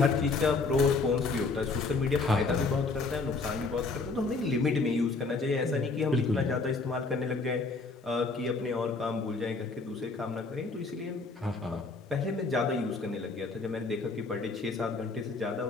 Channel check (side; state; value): right; quieter; 3.9 dB